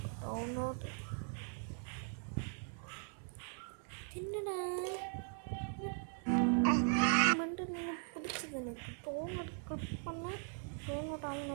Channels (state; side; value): silent; left; 51 dB below the other